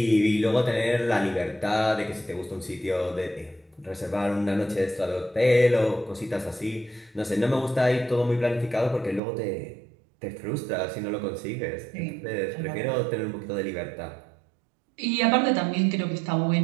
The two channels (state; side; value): drops out; left; at 9.2 s